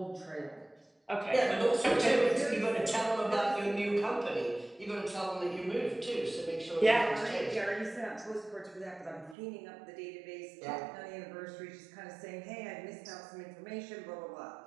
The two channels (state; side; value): drops out; left; at 9.3 s